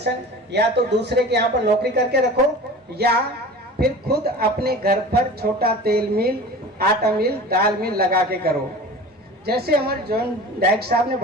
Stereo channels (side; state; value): both; normal; correlation 0.38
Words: या तो दूसरे के यहाँ पर नौकरी करके रखो, या फिर खुद अपने घर पर छोटा तेल मिल, आटा मिल, दाल मिल लगा के करो। जैसे हमारे जॉन डायरेक्टर साहब ने